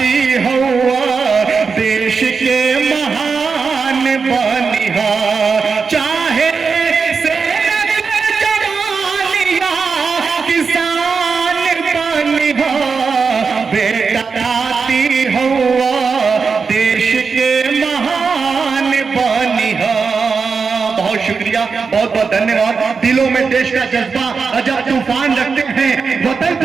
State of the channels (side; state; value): left; quieter; 5.2 dB